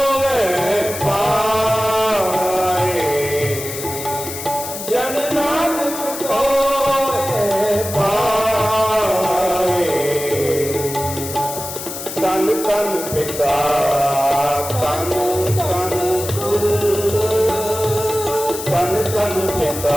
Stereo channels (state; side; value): noise; left; hiss, 8 dB below the sound